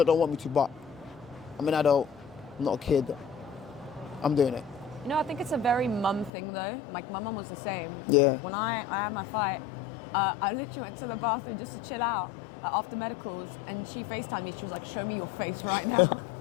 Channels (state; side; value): drops out; right; at 6.3 s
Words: don't want me to, but I'm an adult, I'm not a kid. I'm doing it. You know, I think it's a very mum thing though. Like my mum was the same. Yeah. When I had my fight, I literally went to the bathroom just to chill out after medicals, and she FaceTimed me. She was like, show me your face right now.